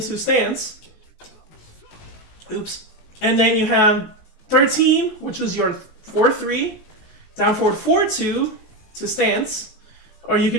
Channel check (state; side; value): late; right; 19 ms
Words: stance. Oops. And then you have 13, which is your 4, 3. Down forward 4, 2 to stance. Or you